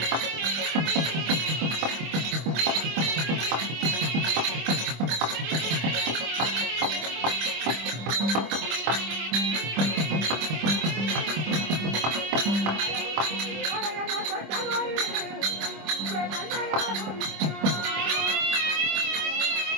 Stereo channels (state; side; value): late; left; 25 ms